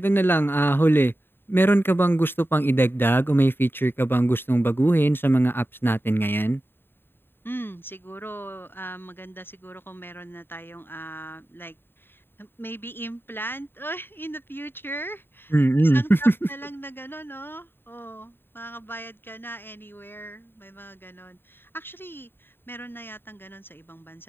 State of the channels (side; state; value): right; late; 0.10 ms